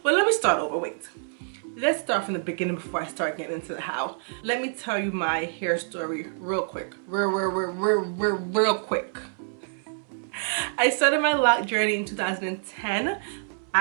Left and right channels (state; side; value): silent; left; 60 dB below the other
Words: Well, let me start over, wait. Let's start from the beginning before I start getting into the how. Let me tell you my hair story real quick. Real quick. I started my lock journey in 2010,